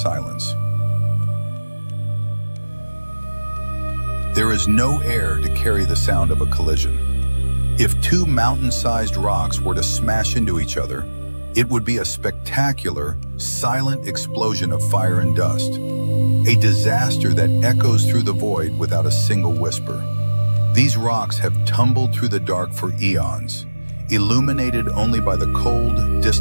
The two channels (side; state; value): both; inverted; correlation -1.00